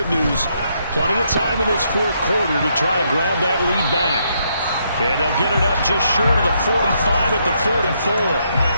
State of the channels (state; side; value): inverted; both; correlation -0.75